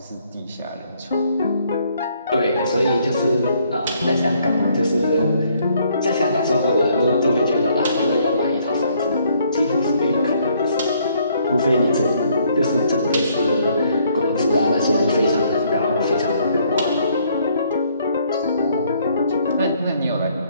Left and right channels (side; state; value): both; inverted; correlation -0.67